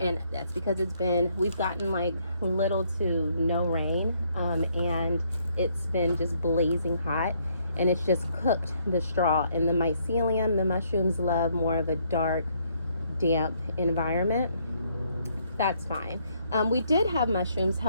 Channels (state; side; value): inverted; both; correlation -0.70